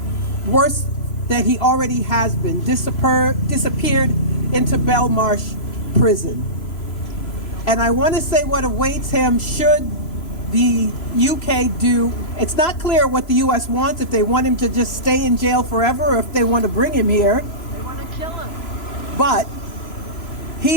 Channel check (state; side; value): late; right; 3.0 ms